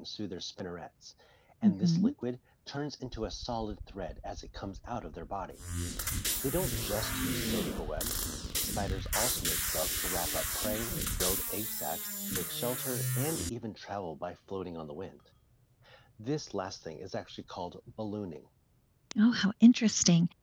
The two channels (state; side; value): identical; both; correlation 1.00